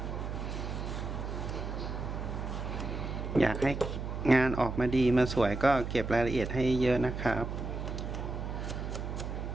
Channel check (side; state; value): right; noise; hum, 5 dB below the sound